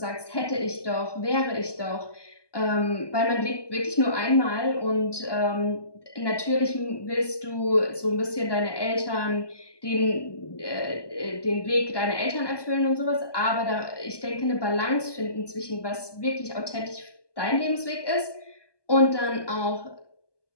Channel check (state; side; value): late; right; 1.2 ms